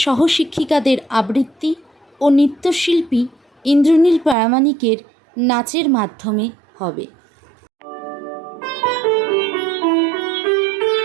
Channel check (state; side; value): drops out; left; at 4.4 s